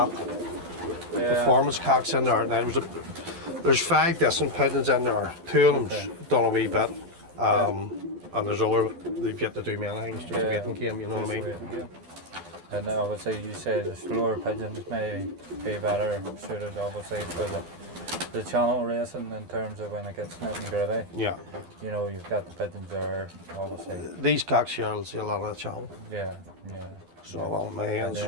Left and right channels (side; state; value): left; late; 12 ms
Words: performance cocks in there. Now, there's 5 decent pigeons in there. 2 of them's done a wee bit. And there's other, they've yet to do many things, just a waiting game, you know what I mean? And obviously you say the slower pigeons may be better suited obviously for the channel racing in terms of when it gets nitty gritty. Yeah. You know, you've got the pigeons there, obviously. These cocks here will see a lot of the channel. Yeah, yeah. So well, my hands,